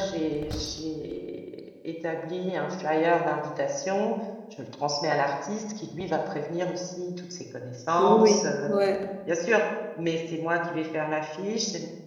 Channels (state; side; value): identical; both; correlation 1.00